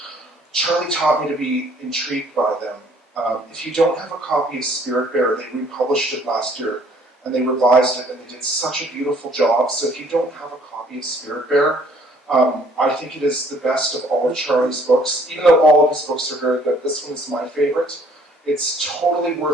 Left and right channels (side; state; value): both; normal; correlation 0.59